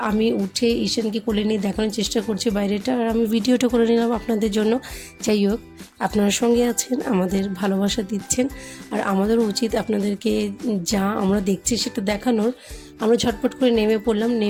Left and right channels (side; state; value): both; identical; correlation 1.00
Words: আমি উঠে ঈশানকে কোলে নিয়ে দেখানোর চেষ্টা করছি বাইরেটা, আর আমি ভিডিওটা করে নিলাম আপনাদের জন্য। যাই হোক, আপনার সঙ্গে আছেন, আমাদের ভালোবাসা দিচ্ছেন, আর আমাদেরও উচিত আপনাদেরকে যা আমরা দেখছি সেটা দেখানোর। আমরা ঝটপট করে নেমে পড়লাম,